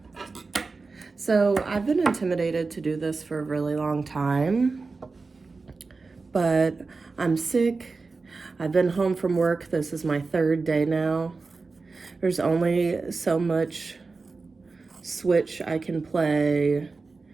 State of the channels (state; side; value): quieter; left; 4.0 dB